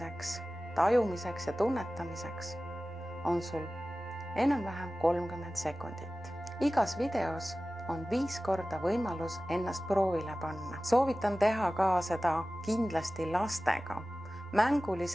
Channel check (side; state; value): both; normal; correlation 0.96